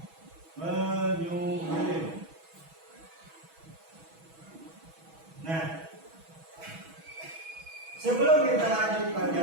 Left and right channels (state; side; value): late; left; 6.2 ms